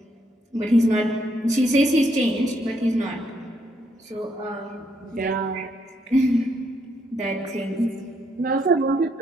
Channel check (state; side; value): normal; both; correlation 0.74